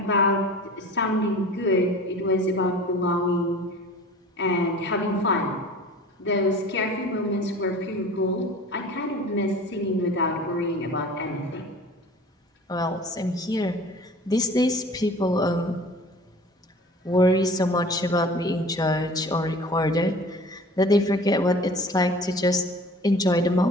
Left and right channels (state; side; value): normal; both; correlation 0.43